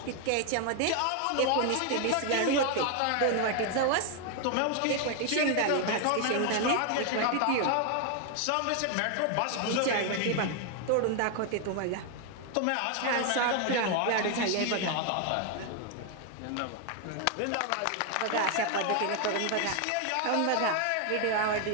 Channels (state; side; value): different; both; correlation 0.01